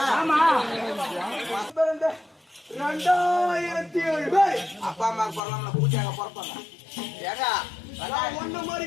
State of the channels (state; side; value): drops out; right; at 5.4 s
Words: 2007 அப்பா அம்மா பரவாயில்ல பூஜையாக பிறப்பாங்க. ஏங்க ஒண்ணு மாதிரி